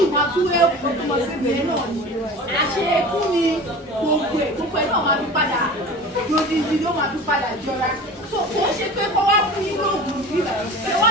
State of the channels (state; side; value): normal; both; correlation 0.37